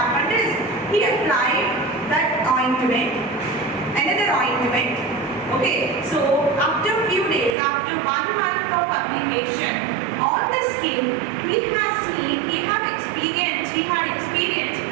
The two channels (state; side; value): drops out; left; at 7.6 s